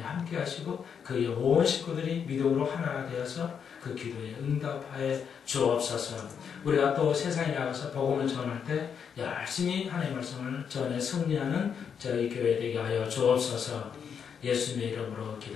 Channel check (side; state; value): right; quieter; 7.2 dB